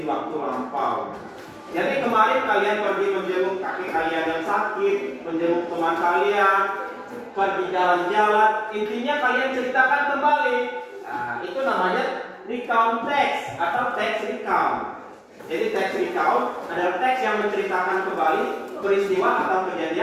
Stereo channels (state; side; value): identical; both; correlation 1.00